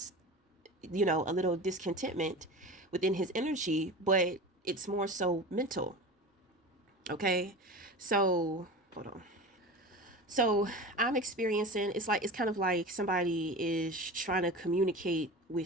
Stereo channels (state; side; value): normal; both; correlation 0.31